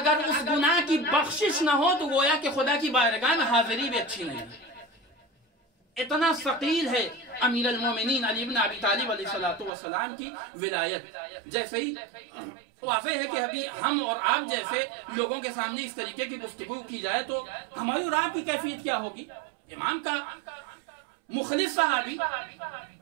اس گناہ کی بخشش نہ ہو تو گویا کہ خدا کی بارگاہ میں حاضری بھی اچھی نہیں. اتنا ثقیل ہے امیر المومنین علی ابن ابی طالب علیہ السلام کی ولایت. جیسے ہی واضح ہے کہ ابھی ہم اور آپ جیسے لوگوں کے سامنے اس طریقے کی گفتگو کی جائے تو ہماری اور آپ کی کیفیت کیا ہوگی. امام کا مخلص صحابی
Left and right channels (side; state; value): left; drops out; at 9.7 s